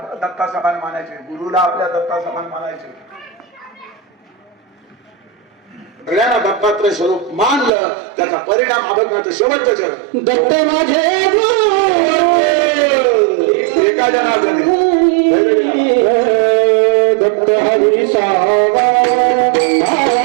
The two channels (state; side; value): drops out; left; at 7.7 s